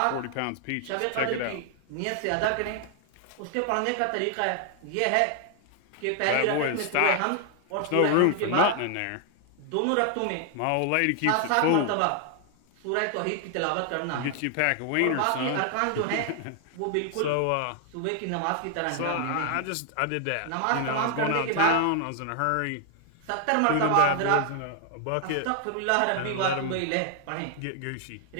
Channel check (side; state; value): both; different; correlation 0.00